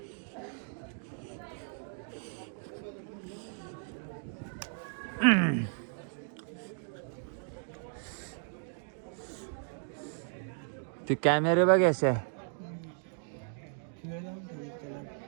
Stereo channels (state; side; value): silent; left; 54 dB below the other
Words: ते कॅमेरे बघ असे.